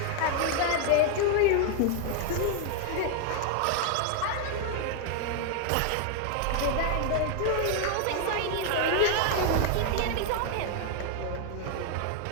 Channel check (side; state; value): both; different; correlation 0.00